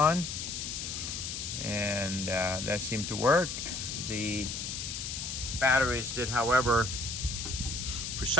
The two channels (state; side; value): noise; left; hiss, 5 dB below the sound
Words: and that seemed to work. The batteries did, however, for